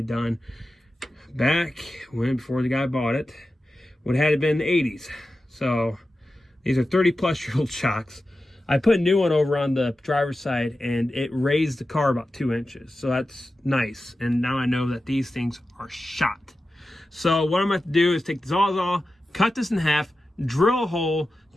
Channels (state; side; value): normal; both; correlation 0.93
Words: done back when, before the guy bought it, what had it been in the 80s. So these are 30 plus year old shocks. I put a new one over on the driver's side and it raised the car about 2 inches. So that's nice. And now I know that these things are shot. So what I'm going to do is take the Sawzall, cut this in half, drill a hole